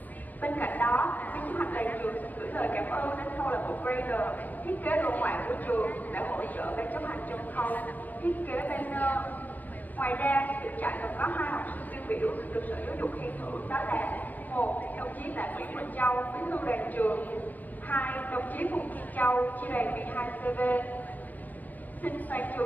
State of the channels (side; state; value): right; late; 0.082 ms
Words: Bên cạnh đó, ban chấp hành đoàn trường xin gửi lời cảm ơn đến câu lạc bộ Grader, thiết kế đồ họa của trường đã hỗ trợ ban chấp hành trong khâu thiết kế banner. Ngoài ra, được trại còn có 2 học sinh tiêu biểu được Sở Giáo dục khen thưởng, đó là 1. Đồng chí Tạ Nguyễn Bình Châu, bí thư đoàn trường. 2. Đồng chí Phùng Thiên Châu, chi đoàn 12 CV. Xin toàn